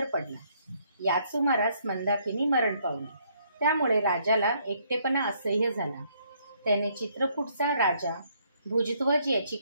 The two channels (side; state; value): both; inverted; correlation -0.69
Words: पडला. याच सुमारास मंदाकिनी मरण पावली. त्यामुळे राजाला एकटेपणा असह्य झाला. त्याने चित्रकूटचा राजा भुजध्वज याची